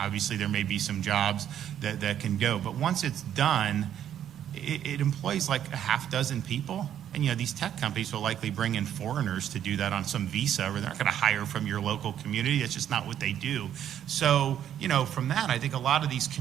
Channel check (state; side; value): quieter; left; 10.2 dB